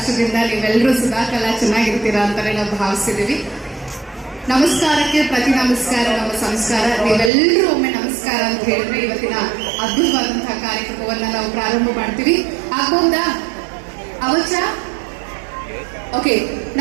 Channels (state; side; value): drops out; left; at 7.3 s